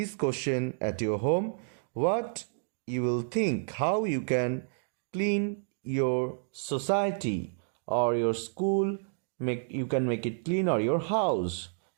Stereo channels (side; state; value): left; silent; digital silence